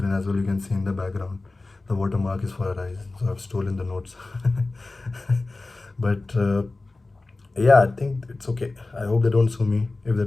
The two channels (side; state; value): right; quieter; 3.3 dB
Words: as well. You can see in the background, the watermark is for Arise, so I've stolen the notes. But yeah, I think it's okay. I hope they don't sue me. If